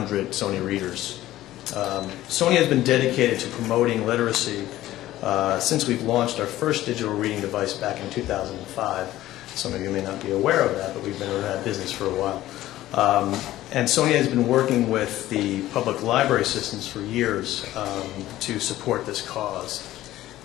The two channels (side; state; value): right; quieter; 14.9 dB